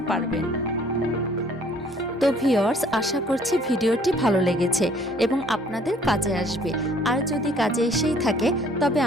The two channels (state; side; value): normal; both; correlation 0.59